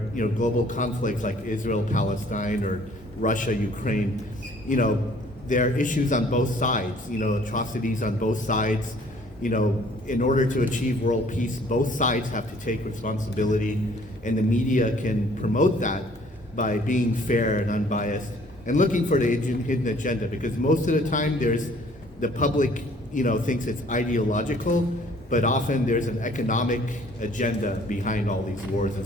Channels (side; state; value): both; normal; correlation 0.57